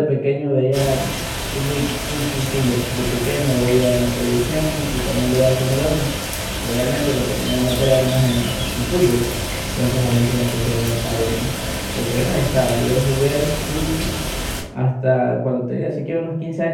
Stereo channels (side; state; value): both; identical; correlation 1.00